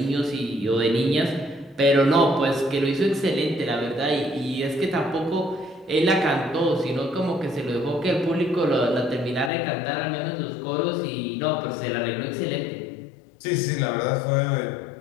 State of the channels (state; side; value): drops out; right; at 9.5 s